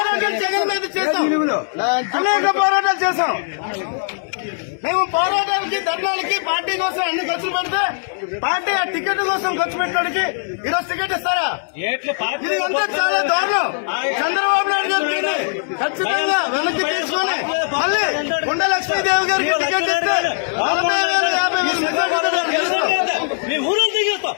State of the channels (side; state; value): right; silent; 66 dB below the other